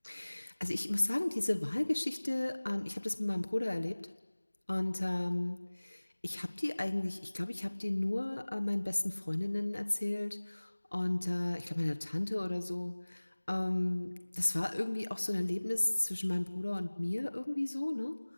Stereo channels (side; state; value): both; inverted; correlation -1.00